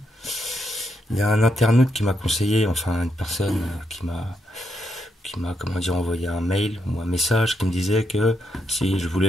Il y a un internaute qui m'a conseillé, enfin une personne qui m'a comment dire, envoyé un mail ou un message qui me disait que si je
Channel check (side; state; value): both; normal; correlation 0.80